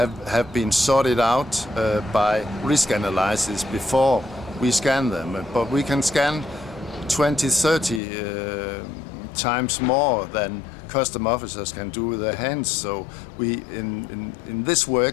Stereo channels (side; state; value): right; drops out; at 8.0 s